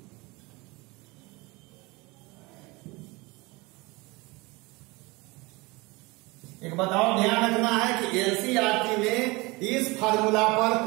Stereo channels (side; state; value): left; quieter; 24.2 dB